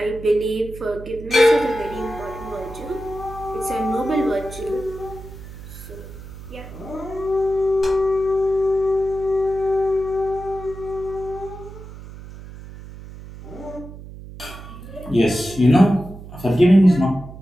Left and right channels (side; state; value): right; noise; hum, 14 dB below the sound